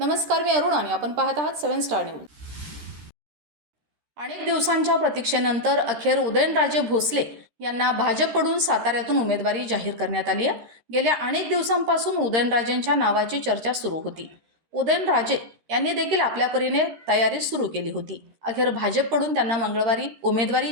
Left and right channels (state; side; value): late; left; 13 ms